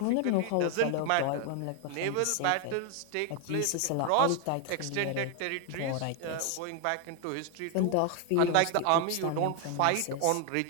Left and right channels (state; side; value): different; both; correlation 0.00